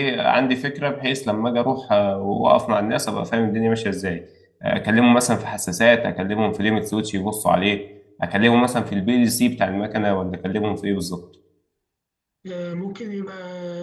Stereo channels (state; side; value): identical; both; correlation 1.00